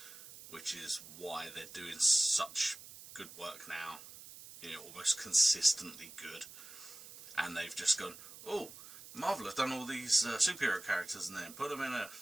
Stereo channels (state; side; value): noise; right; hiss, 16 dB below the sound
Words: which is why they're doing such good work now, almost consistently good. And they've just gone, oh, Marvel have done all these superhero characters and then put them in a